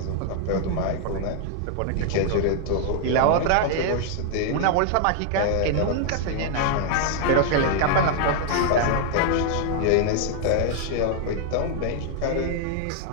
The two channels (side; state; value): both; different; correlation 0.00